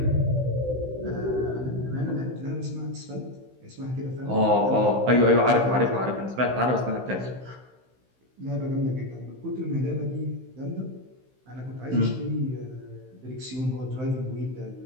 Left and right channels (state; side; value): late; left; 15 ms